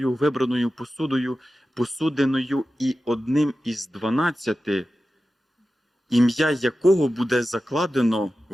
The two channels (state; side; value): normal; both; correlation 0.93